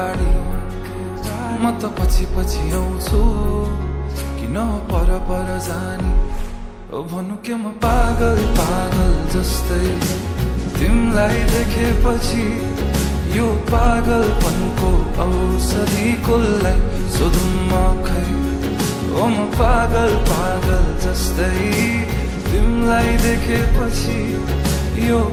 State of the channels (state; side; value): identical; both; correlation 1.00